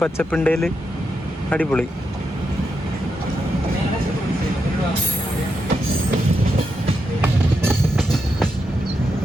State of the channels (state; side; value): normal; both; correlation 0.84